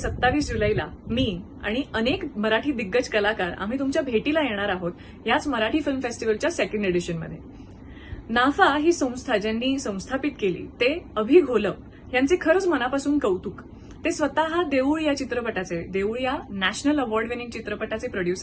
जुलैला मी आणि अनेक मराठी दिग्गज कलाकार आम्ही तुमच्या भेटीला येणार आहोत याच मराठी फिल्म फेस्टिवलच्या सेकंड एडिशनमध्ये. नाफा ही संस्था ज्यांनी संस्थापित केली ते अभि घोलप यांचे खरंच मनापासून कौतुक. ते स्वतः देऊळ या चित्रपटाचे, देऊळ या नॅशनल अवॉर्ड विनिंग चित्रपटाचे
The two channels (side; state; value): both; identical; correlation 1.00